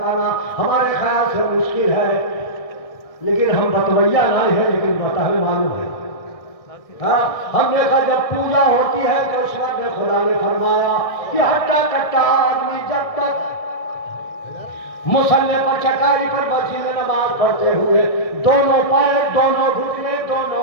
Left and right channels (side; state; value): right; late; 1.6 ms